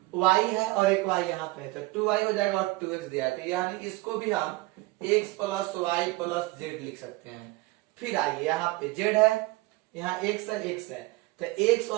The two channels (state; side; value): quieter; left; 21.1 dB